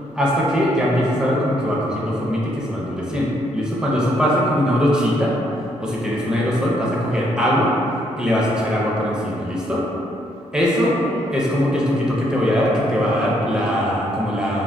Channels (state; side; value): normal; both; correlation 0.72